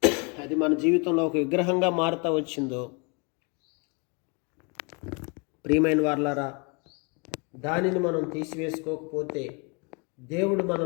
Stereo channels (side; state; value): right; quieter; 32.7 dB